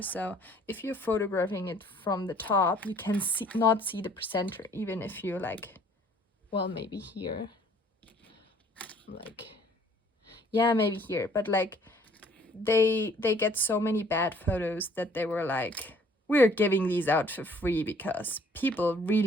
So if you're photographing it from the top, you can not see the presenter, even if you're like, well, maybe here, like, yeah, maybe here, but like they get so many bad photos that they were like, we're giving these out for free because people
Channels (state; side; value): normal; both; correlation 0.58